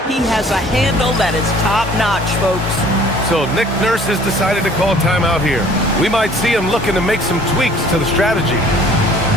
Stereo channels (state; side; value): normal; both; correlation 0.53